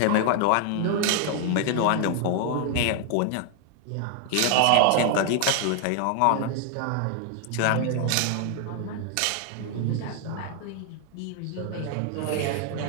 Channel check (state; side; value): different; both; correlation 0.00